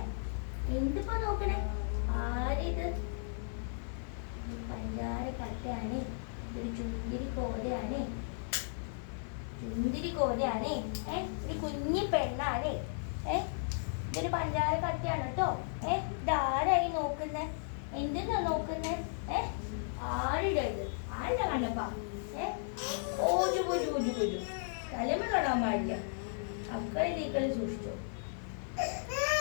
എന്തിപ്പോ നോക്കണേ? ആരിത്? പഞ്ചാര കട്ടയാണ്. ഇതൊരു ചുന്തിരി കോതയാണ്. ചുന്തിരി കോതയാണ്. ഒരു കുഞ്ഞി പെണ്ണാണ്. ഇതൊരു പഞ്ചാര കട്ടയാണ് കേട്ടോ. ഇതാരായി നോക്കുന്നേ? എന്തെന്നാ നോക്കുന്നേ? ആരുടെ ഇത്? ആരുടെ കണ്ടപ്പാ? ഓജു പോജു ഓജു പോജു തലമ തൊടാൻ പാടില്ല. അക്കളി തീക്കളി സൂക്ഷിച്ചോ.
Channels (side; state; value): right; silent; 54 dB below the other